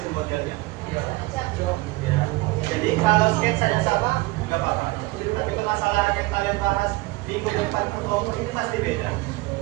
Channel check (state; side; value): quieter; left; 21.9 dB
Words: modelnya. Ya. Jadi kalau sketsanya sama, nggak apa-apa. Tapi permasalahan yang kalian bahas minggu depan ke kelompok ini pasti beda.